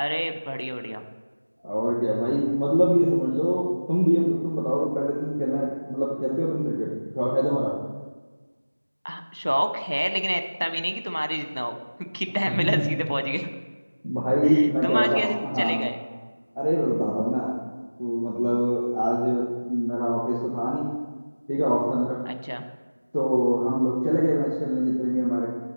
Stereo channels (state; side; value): inverted; both; correlation -1.00